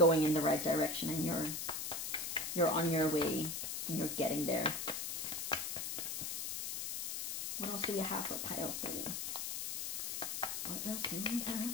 in the right direction, and you're on your way, and you're getting there. What else do we have for pile 3? What else do we have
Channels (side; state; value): left; noise; hiss, 3 dB below the sound